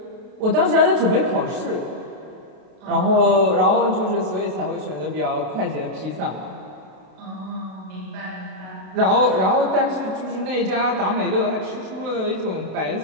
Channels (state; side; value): late; left; 32 ms